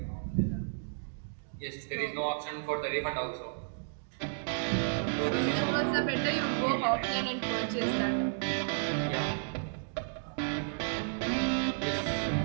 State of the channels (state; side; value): silent; left; digital silence